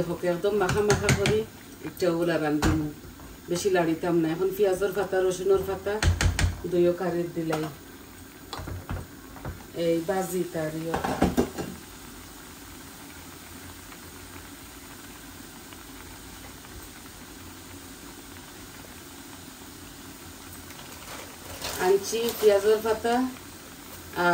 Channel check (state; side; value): identical; both; correlation 1.00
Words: একদম মাখা মাখা করি একটা ওগুলা রান্ধিমু, বেশি লাড়িতাম না। এখন পেঁয়াজের পাতা রসুনের পাতা দইও কারির দিলাই এই বাজি তারিও। আনছি পেঁয়াজের পাতা